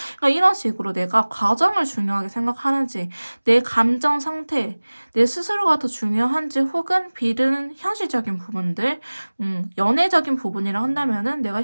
그러니까 이런 식으로 내가 과정을 중요하게 생각하는지, 내 감정 상태, 내 스스로가 더 중요한지, 혹은 B는 현실적인 부분들, 연애적인 부분이라 한다면은 내가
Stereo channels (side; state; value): both; inverted; correlation -1.00